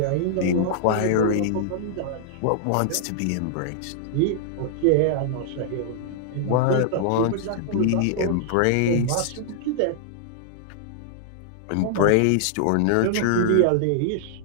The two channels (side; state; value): both; different; correlation -0.01